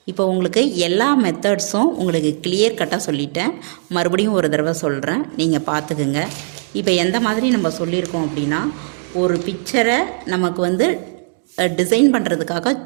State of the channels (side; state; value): left; silent; digital silence